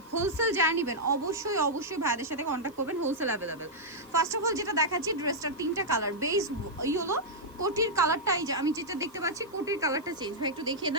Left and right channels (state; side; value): noise; right; hiss, 29 dB below the sound